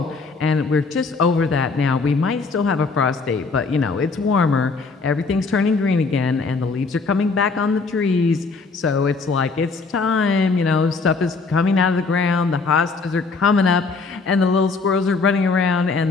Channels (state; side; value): quieter; right; 4.2 dB